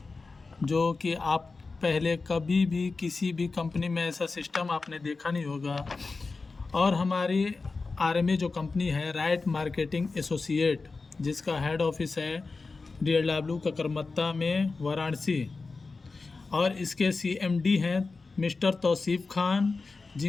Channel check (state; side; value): quieter; right; 4.0 dB